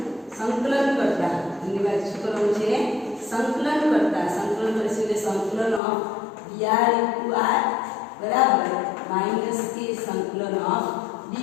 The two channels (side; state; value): right; drops out; at 5.8 s